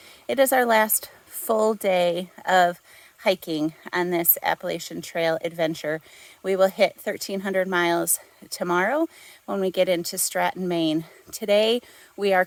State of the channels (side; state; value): both; identical; correlation 1.00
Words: It is our last full day of hiking on this Appalachian Trail adventure. We will hit 1,300 miles tomorrow when we get into Stratton, Maine. Today, we are